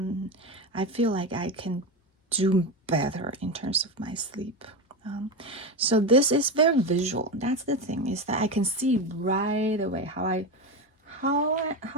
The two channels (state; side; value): normal; both; correlation 0.17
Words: I feel like I can do better in terms of my sleep. So this is very visual. That's the thing, is that I can see right away how